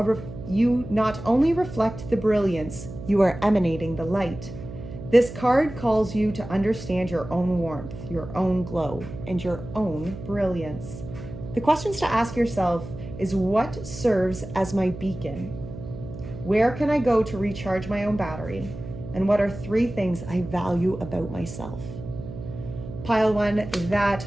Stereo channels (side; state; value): right; noise; hum, 11 dB below the sound